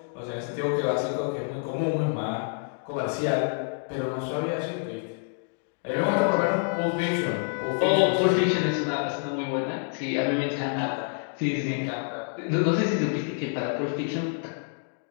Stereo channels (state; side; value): silent; right; 60 dB below the other